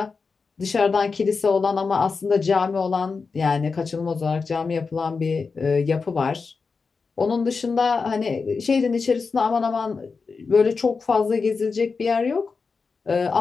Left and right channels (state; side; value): quieter; right; 4.8 dB